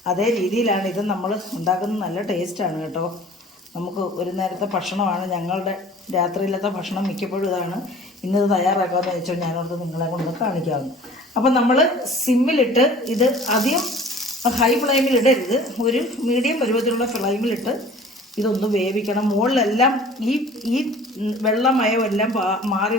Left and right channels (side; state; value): both; normal; correlation 0.47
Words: അതേ രീതിയിലാണ് ഇത് നമ്മൾ ഉണ്ടാക്കുന്നത്. നല്ല ടേസ്റ്റാണ് കേട്ടോ. നമുക്ക് ഒരു നേരത്തെ ഭക്ഷണമാണ്, ഞങ്ങളുടെ രാത്രിയിലത്തെ ഭക്ഷണം മിക്കപ്പോഴും ഇതാണ്. ഇന്നത് തയ്യാറാക്കാമെന്ന് വെച്ചാൽ ഞാനോർത്ത് നിങ്ങളെ കൊണ്ട് കാണിക്കാവുന്നു. അപ്പം നമ്മൾ സിമ്മിലിട്ട് ഇത് അധികം ഹൈ ഫ്ലെയിമിൽ ഇടരുത്, ഒരു മീഡിയം പരുവത്തിലുള്ള ഫ്ലെയിമിലിട്ട് ഇതൊന്ന് വേവിക്കണം. മുകളിലെല്ലാം ഈ വെള്ളമയമെല്ലാം മാറി